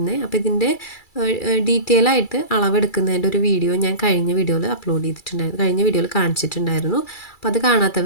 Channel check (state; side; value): late; right; 2.3 ms